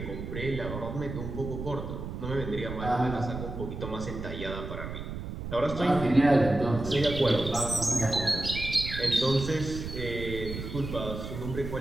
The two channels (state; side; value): noise; right; rumble, 7 dB below the sound